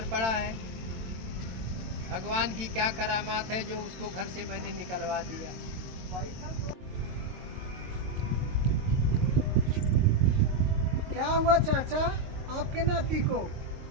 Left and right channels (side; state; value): left; late; 22 ms